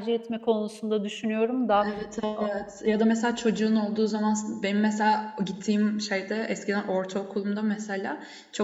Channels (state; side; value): identical; both; correlation 1.00